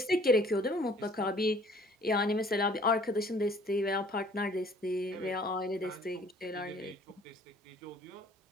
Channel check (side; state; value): both; normal; correlation 0.56